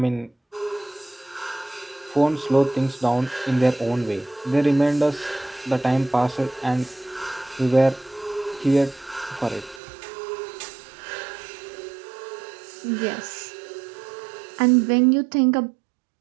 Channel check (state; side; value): drops out; left; at 9.8 s